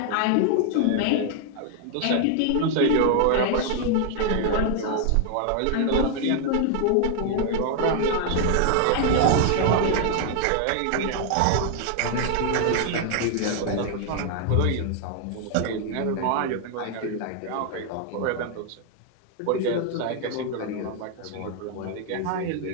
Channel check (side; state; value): both; different; correlation 0.00